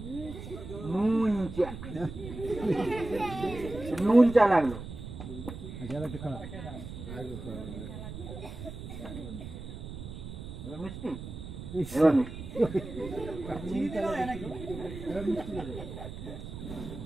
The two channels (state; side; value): noise; right; rumble, 10 dB below the sound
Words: নুন চা, নুন চা লাগলো। মিষ্টি এবার